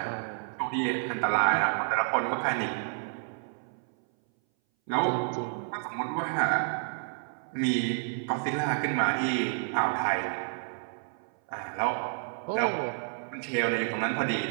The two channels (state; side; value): silent; left; 58 dB below the other